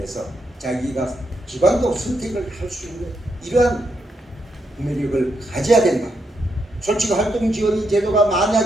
자기가 기관도 선택을 할 수 있는 이러한 구매력을 가져야 된다. 솔직히 활동지원인 제도가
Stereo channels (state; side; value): normal; both; correlation 0.80